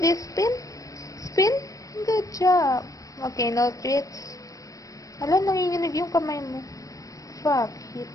Spin. Spin. Good job. Okay, no treats. Alam, nanginginig yung kamay mo. Fuck it.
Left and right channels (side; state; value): right; late; 0.16 ms